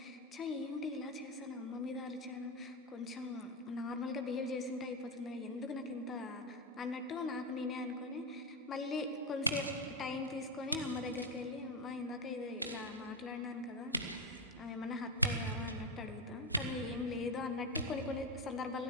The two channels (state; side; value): normal; both; correlation 0.09